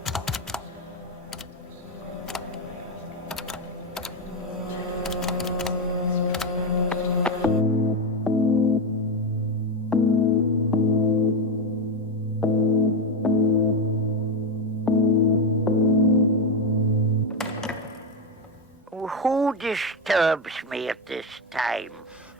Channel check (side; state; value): both; normal; correlation 0.09